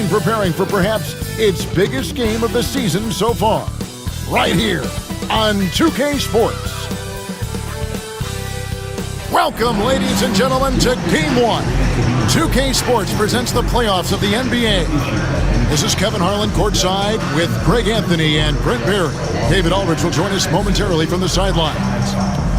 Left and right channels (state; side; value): identical; both; correlation 1.00